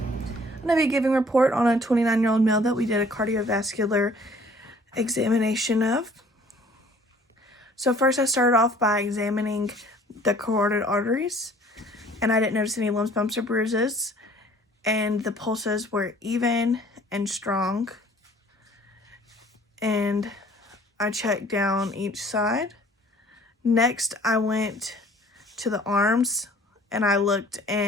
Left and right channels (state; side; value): normal; both; correlation 0.54